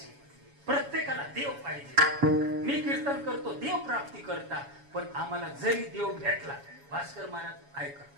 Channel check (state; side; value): late; left; 7.1 ms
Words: प्रत्येकाला देव पाहिजे. मी कीर्तन करतो देव प्राप्ती करता, पण आम्हाला जरी देव भेटला, भास्कर महाराज ऐका,